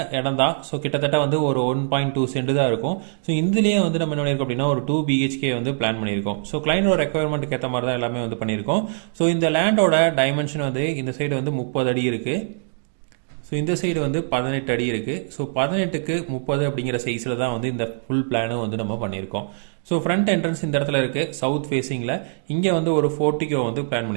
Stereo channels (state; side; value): silent; left; digital silence